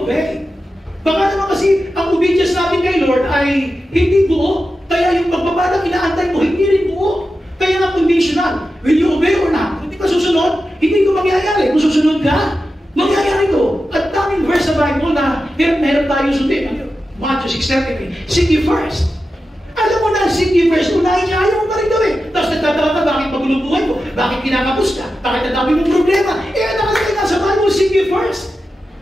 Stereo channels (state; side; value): normal; both; correlation 0.91